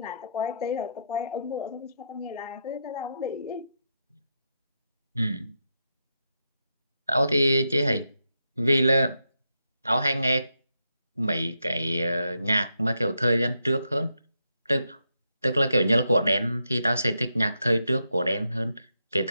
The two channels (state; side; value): inverted; both; correlation -0.83